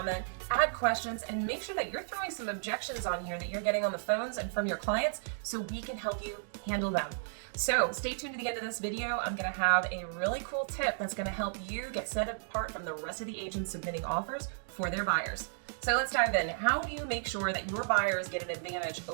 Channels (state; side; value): silent; left; digital silence